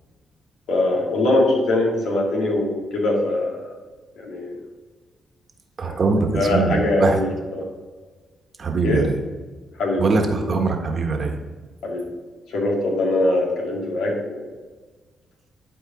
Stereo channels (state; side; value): normal; both; correlation 0.73